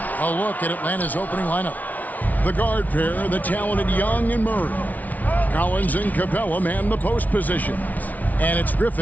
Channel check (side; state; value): right; late; 0.075 ms